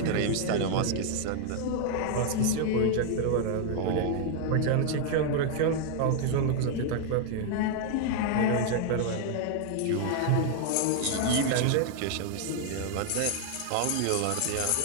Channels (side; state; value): both; different; correlation 0.00